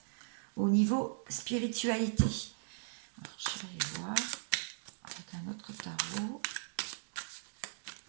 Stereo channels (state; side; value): silent; left; digital silence